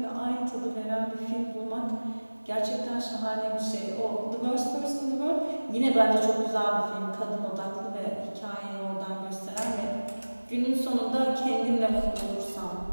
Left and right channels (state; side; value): inverted; both; correlation -1.00